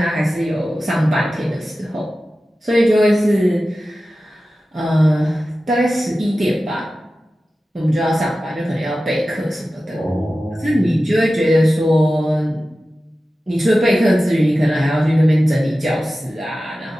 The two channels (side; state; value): both; normal; correlation 0.94